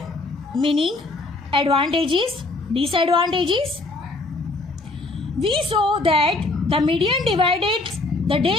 meaning, advantages, disadvantages. We saw that the median divided the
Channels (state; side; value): quieter; right; 3.1 dB